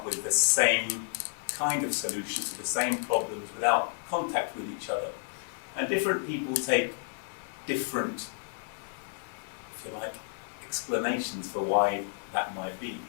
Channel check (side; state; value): right; silent; digital silence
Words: with the same kind of solutions to the same problems without contact with each other. And different people take different, if you like, explanations for why that might be.